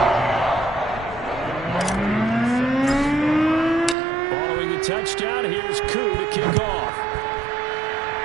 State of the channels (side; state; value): left; drops out; at 4.0 s